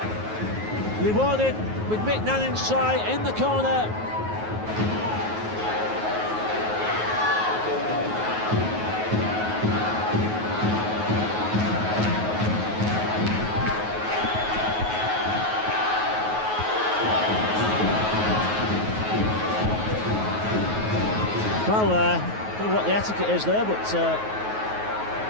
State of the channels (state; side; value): late; left; 9.4 ms